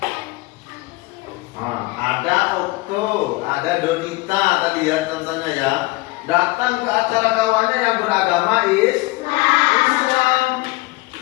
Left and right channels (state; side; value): quieter; right; 22.3 dB